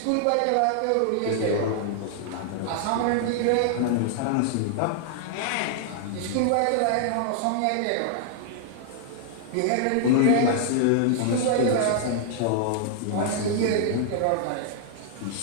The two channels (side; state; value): both; different; correlation -0.01